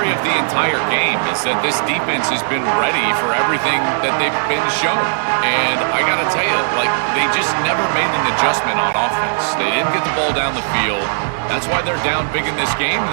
of the entire game, is that this defense has been ready for everything that they've been shown. And I got to tell you, like, they just never made an adjustment on offense. They didn't get the ball down the field. That's why they're down big in this game,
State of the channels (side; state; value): left; silent; digital silence